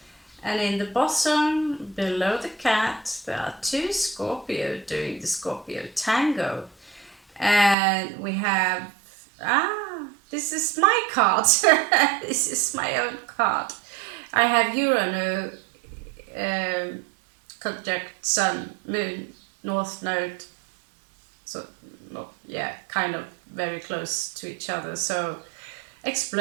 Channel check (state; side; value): drops out; left; at 7.8 s